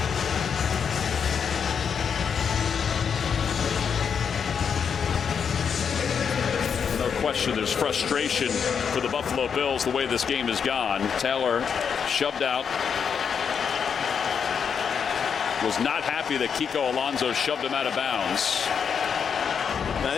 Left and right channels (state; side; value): quieter; right; 6.9 dB